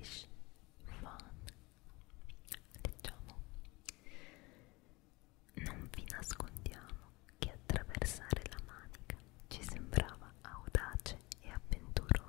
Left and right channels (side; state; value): right; quieter; 23.6 dB